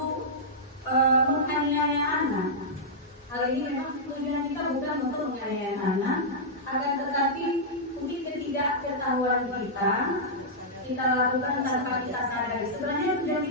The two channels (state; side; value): normal; both; correlation -0.10